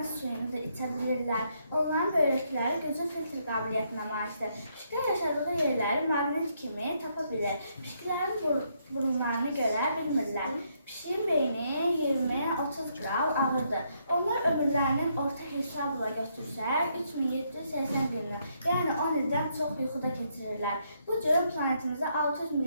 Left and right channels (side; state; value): both; inverted; correlation -0.74